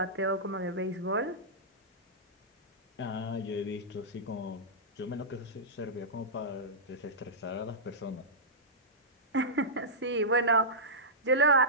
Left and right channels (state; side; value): normal; both; correlation -0.14